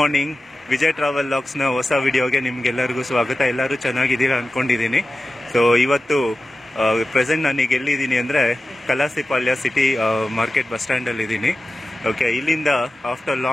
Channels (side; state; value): both; normal; correlation 0.94